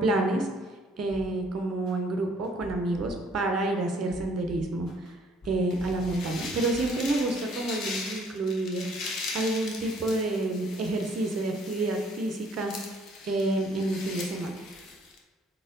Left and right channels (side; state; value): both; normal; correlation 0.62